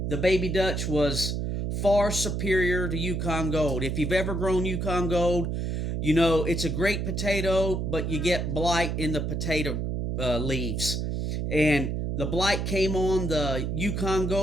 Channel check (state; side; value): noise; right; hum, 1 dB below the sound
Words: the baby Dutch, was far superior to Yukon Gold. If you've ever grown Yukon Gold, you know it's a great potato, but you get blight in the potato leaves. And the blight came on the Yukon